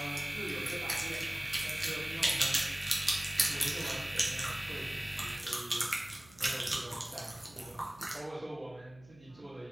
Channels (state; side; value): noise; right; hum, 24 dB below the sound